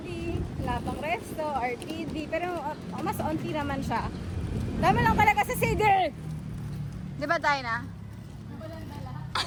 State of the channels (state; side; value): identical; both; correlation 1.00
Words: wala pang resto, RPD, pero mas onti naman siya. Dami lang talaga sa CD. Di ba, Dina?